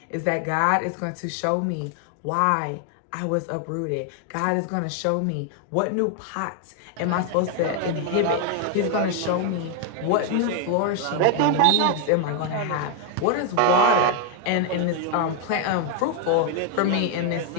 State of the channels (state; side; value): different; both; correlation 0.00